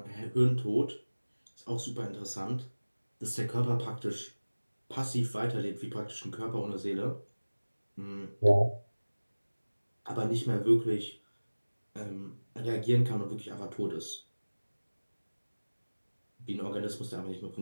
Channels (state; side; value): inverted; both; correlation -1.00